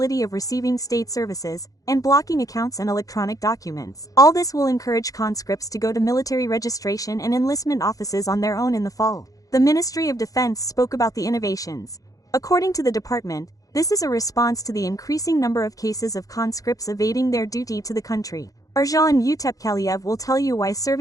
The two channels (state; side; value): late; right; 0.17 ms